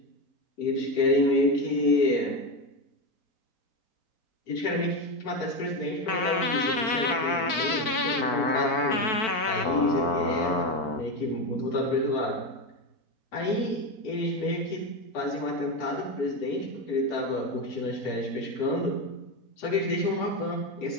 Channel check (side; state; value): right; late; 4.5 ms